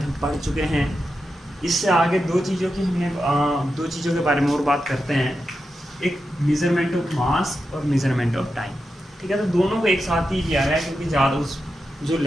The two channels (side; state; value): both; normal; correlation 0.89